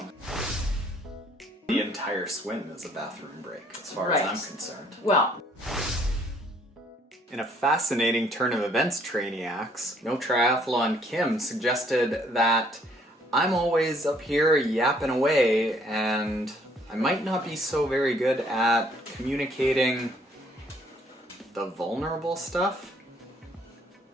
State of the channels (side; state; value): both; normal; correlation 0.63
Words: The entire swim is a bathroom break, as far as I'm concerned. Well, in a fascinating turn of events, Trainiacs, No Triathlon Kim suggested that I'm always up here yapping away and I might not be so very good at communicating the vulnerable stuff.